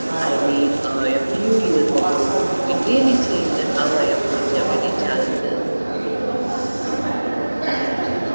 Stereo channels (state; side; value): inverted; both; correlation -1.00